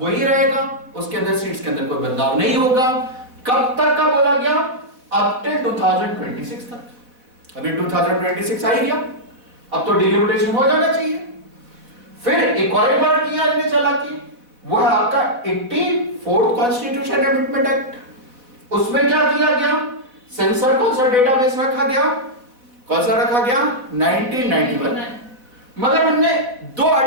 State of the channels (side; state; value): left; late; 4.1 ms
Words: वही रहेगा, उसके अंदर सीट्स के अंदर कोई बदलाव नहीं होगा। कब तक का बोला गया? अप टिल 2026 तक। अभी 2026 आ ही गया, अब तो डिलिमिटेशन हो जाना चाहिए। फिर एक और बार किया इन्हें चला कि वो है आपका 84th कॉन्स्टिट्यूशन अमेंडमेंट एक्ट। उसमें क्या किया गया? सेंसर कौन सा डेटाबेस रखा गया? कौन सा रखा गया? 1991। मगर हमने 2